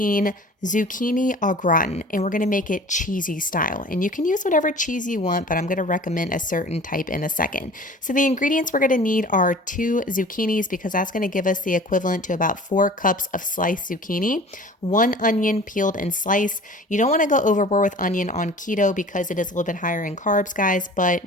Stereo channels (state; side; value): normal; both; correlation 0.43